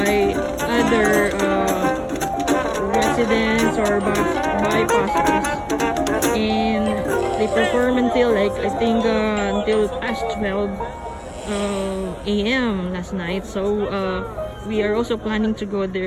other residents or bypassers, and they perform until until past 12 a.m. last night. So we are also planning to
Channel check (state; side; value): identical; both; correlation 1.00